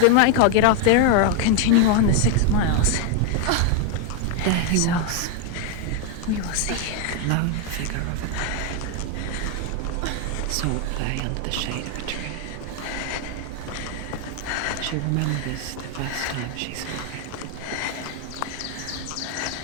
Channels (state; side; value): different; both; correlation 0.00